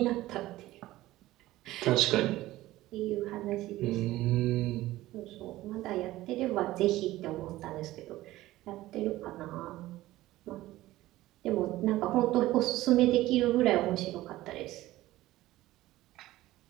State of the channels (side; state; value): left; quieter; 16.5 dB